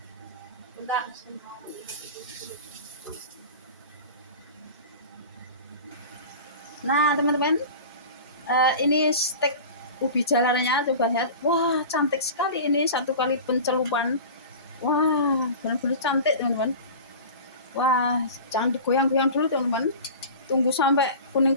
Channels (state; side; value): inverted; both; correlation -0.35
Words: Bentar. Nah, teman-teman, ini steak ubi jalarnya, coba lihat. Wah, cantik sekali ini, satu kali pencelupan. Wah, benar-benar cantik, teman-teman. Wah, jangan digoyang-goyang dulu, teman-teman. Tunggu sampai kuning